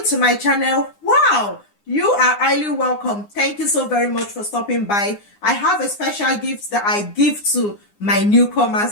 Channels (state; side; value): late; right; 9.8 ms